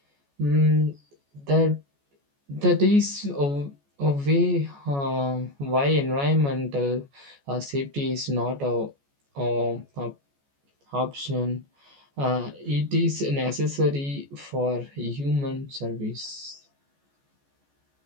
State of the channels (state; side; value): late; left; 14 ms